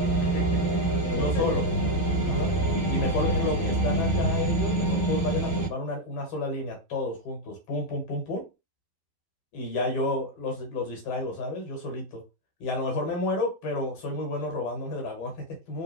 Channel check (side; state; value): right; late; 12 ms